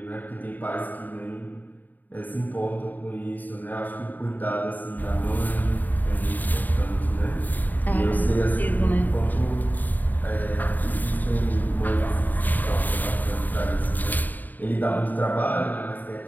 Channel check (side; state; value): right; late; 0.086 ms